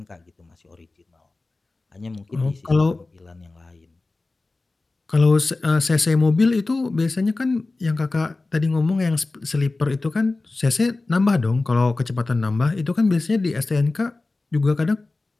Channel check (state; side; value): quieter; right; 3.3 dB